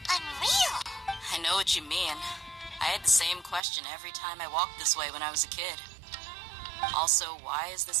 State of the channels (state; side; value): drops out; left; at 3.6 s